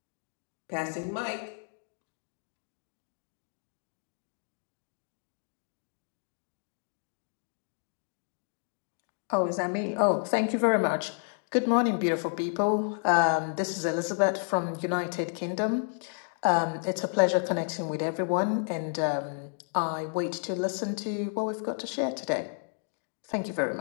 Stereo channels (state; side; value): silent; right; 57 dB below the other